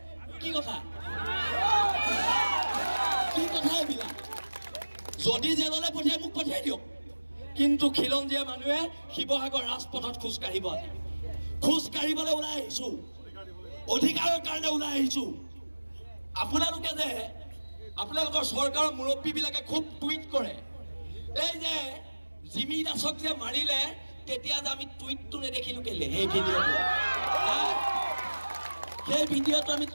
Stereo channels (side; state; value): both; inverted; correlation -1.00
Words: কি কথা এইবিলাক যদি জেললৈ পঠিয়াই মোক পঠিয়াই দিয়ক কিন্তু খিলঞ্জীয়া মানুহে শিৱসাগৰ ৰাজপথত খোজকাঢ়িবলৈ ওলাই আহিছো অধিকাৰৰ কাৰণে ওলাই আহিছো আপোনালোকে যে আপোনালোকৰ চৰকাৰৰ মুৰব্বীবিলাকে খুব টুইট কৰে এই যে জিমি দাসক যে মাৰিলে তেতিয়া যে আমি টুইটটো নেদেখিলো কেলে সেই ভিডিঅ'টো আমি